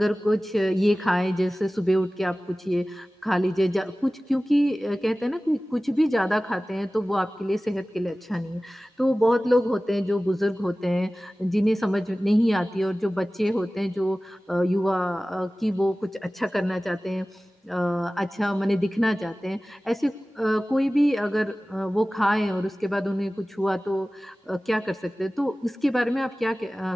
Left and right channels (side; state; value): both; normal; correlation 0.97